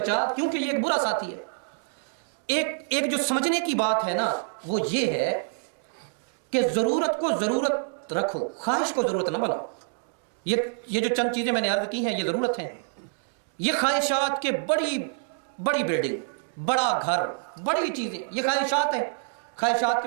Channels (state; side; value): silent; left; digital silence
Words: کیونکہ یہ ایک برا ساتھی ہے۔ ایک جو سمجھنے کی بات ہے نا وہ یہ ہے کہ ضرورت کو ضرورت رکھو، خواہش کو ضرورت نہ بناؤ۔ یہ جو چند چیزیں میں نے عرض کی ہیں یہ ضرورت ہیں، یہ خواہشات کے بڑی بلڈنگ، بڑا گھر، بڑی چیزیں، یہ خواہشات ہیں۔ خواہشات